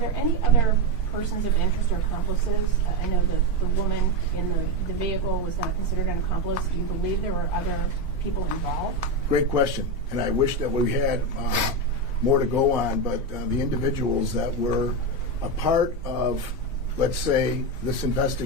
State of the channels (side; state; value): left; late; 3.1 ms